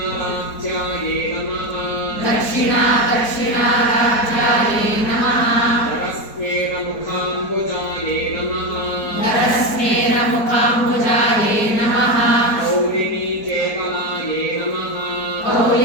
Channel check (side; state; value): right; late; 4.5 ms